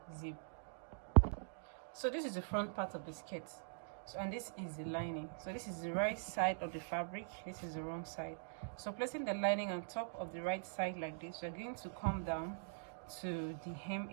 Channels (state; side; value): silent; left; digital silence